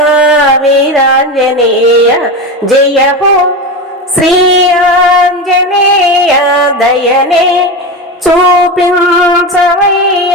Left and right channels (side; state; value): both; normal; correlation 0.21